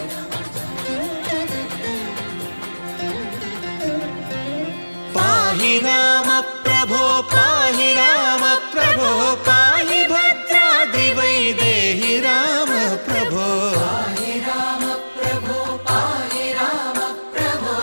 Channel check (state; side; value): inverted; both; correlation -1.00